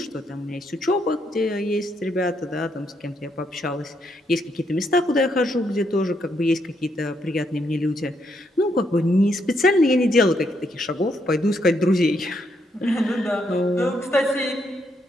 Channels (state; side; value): normal; both; correlation 0.76